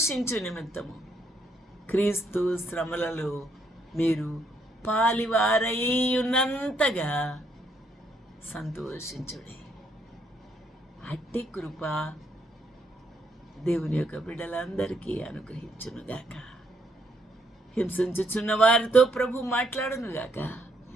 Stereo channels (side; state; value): both; normal; correlation 0.72